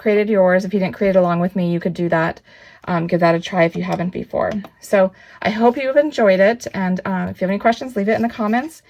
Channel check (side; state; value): both; identical; correlation 1.00